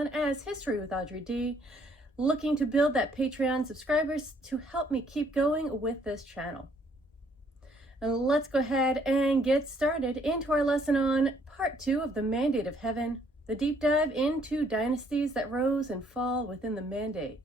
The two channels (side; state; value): both; normal; correlation 0.66